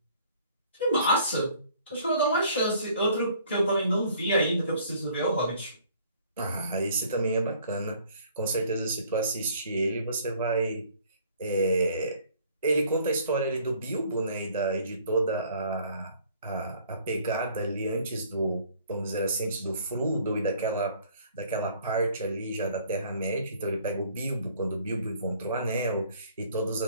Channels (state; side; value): inverted; both; correlation -0.57